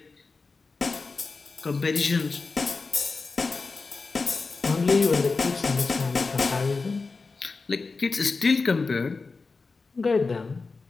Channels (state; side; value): quieter; right; 4.2 dB